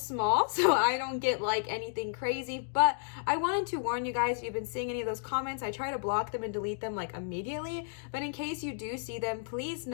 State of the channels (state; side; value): silent; right; digital silence